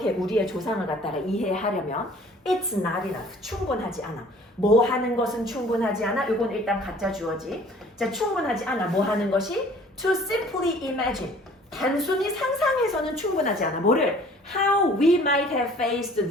우리의 조상을 갖다가 이해하려면 It's not enough. 충분하지 않아. 뭐 하는 것은 충분하지 않아. 이건 일단 가짜 주어지. 자, 충분하지 않아. 뭐 하는 것이? To simply imagine. 단순히 상상해서는 충분하지 않아. 뭐를? How we might have faced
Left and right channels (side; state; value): both; normal; correlation 0.52